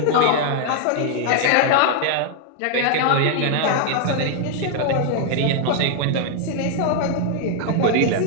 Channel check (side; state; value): both; different; correlation 0.00